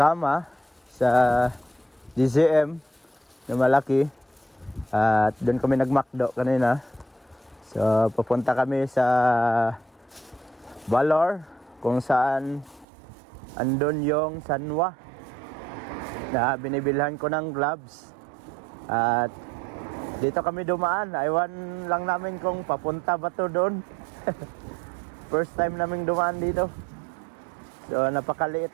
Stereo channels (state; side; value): drops out; left; at 12.9 s